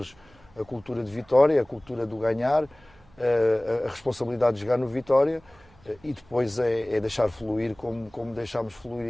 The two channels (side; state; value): right; noise; hum, 28 dB below the sound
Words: a cultura de vitória, a cultura do ganhar, a responsabilidade de jogar no Vitória, e depois é deixar fluir como deixámos